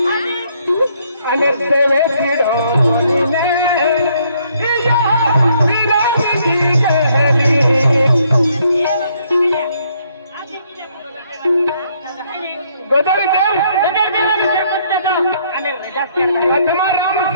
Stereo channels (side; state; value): both; inverted; correlation -0.68